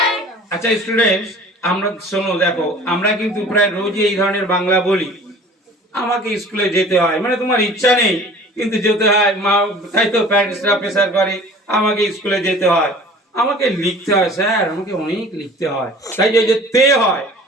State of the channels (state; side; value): normal; both; correlation 0.46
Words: আচ্ছা students, আমরা শোনো, দেখো আমরা কিন্তু প্রায় রোজই এই ধরনের বাংলা বলি। আমাকে স্কুলে যেতে হয়, মানে তোমার ইচ্ছা নেই কিন্তু যেতে হয়, মা তাই তো প্যারেন্টসরা প্রেসার করে, আমাকে স্কুলে যেতে হয়, আমাকে লিখতে হয় স্যার, আমাকে অনেক লিখতে হয়। তাই যে তে হয়,